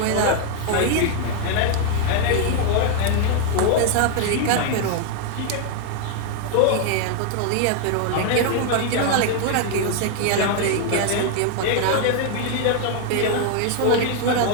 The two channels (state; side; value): different; both; correlation 0.00